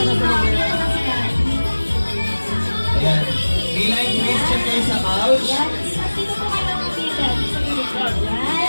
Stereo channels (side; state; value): both; inverted; correlation -1.00